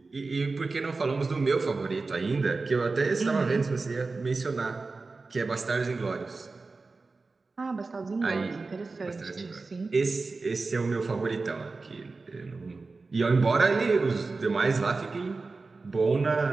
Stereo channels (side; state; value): left; quieter; 3.9 dB